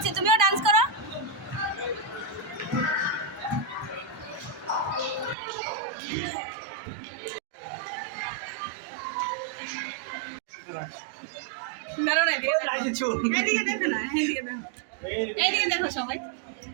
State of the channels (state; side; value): drops out; left; at 5.4 s